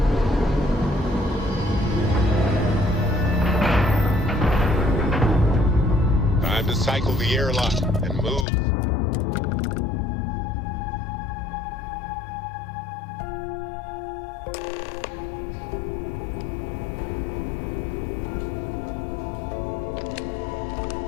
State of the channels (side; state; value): right; drops out; at 8.5 s